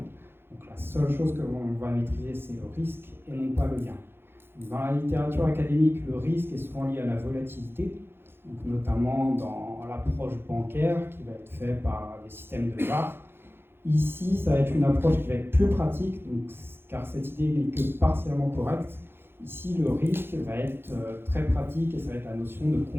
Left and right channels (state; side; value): late; left; 0.11 ms